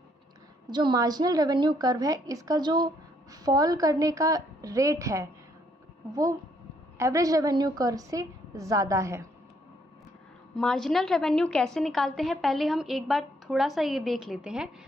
जो मार्जिनल रेवेन्यू कर्व है इसका जो फॉल करने का रेट है वो एवरेज रेवेन्यू कर्व से ज़्यादा है। मार्जिनल रेवेन्यू कैसे निकालते हैं पहले हम एक बार थोड़ा सा ये देख लेते हैं।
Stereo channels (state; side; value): normal; both; correlation 0.70